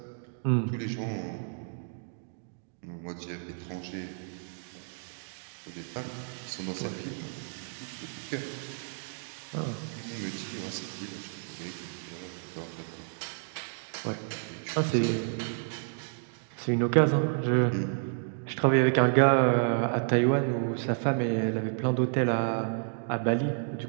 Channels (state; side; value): silent; left; digital silence